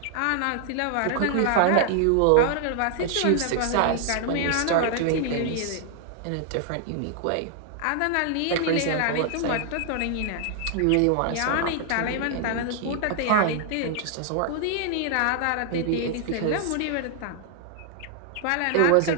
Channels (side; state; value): both; different; correlation 0.00